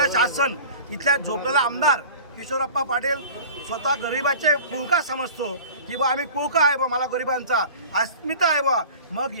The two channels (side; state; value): both; inverted; correlation -0.40